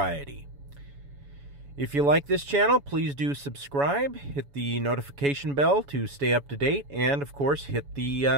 If you like this channel, please do subscribe, hit the notification bell to stay up to date, and of course, hit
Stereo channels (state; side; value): late; left; 7.1 ms